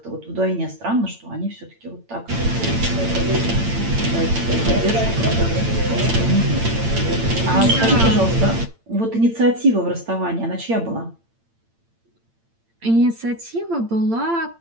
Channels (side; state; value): left; late; 8.8 ms